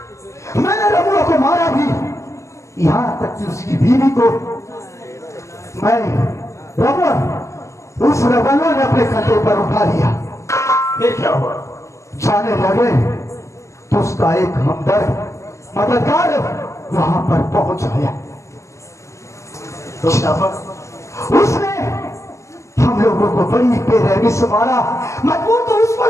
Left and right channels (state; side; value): late; right; 0.14 ms